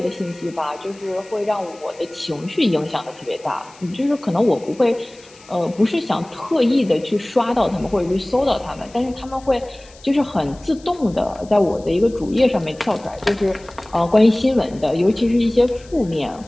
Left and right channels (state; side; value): noise; left; hiss, 25 dB below the sound